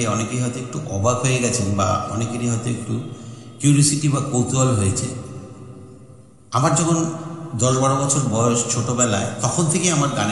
অনেকেই হয়তো একটু অবাক হয়ে গেছেন বা অনেকেরই হয়তো একটু কিউরিওসিটি বা কৌতূহল হয়েছে। আমার যখন 10-12 বছর বয়স, ছোটোবেলায়, তখন থেকেই আমার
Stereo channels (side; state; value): both; identical; correlation 1.00